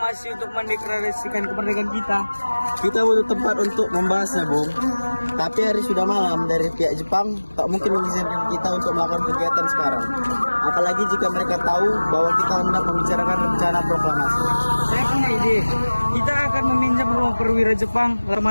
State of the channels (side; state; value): both; inverted; correlation -1.00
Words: untuk mendeklarasikan kemerdekaan kita? Kita butuh tempat untuk membahasnya, Bung. Tapi hari sudah malam, dari pihak Jepang tak mungkin mengizinkan kita untuk melakukan kegiatan sekarang. Apalagi jika mereka tahu bahwa kita hendak membicarakan rencana proklamasi. Saya punya ide. Kita akan meminjam rumah perwira Jepang,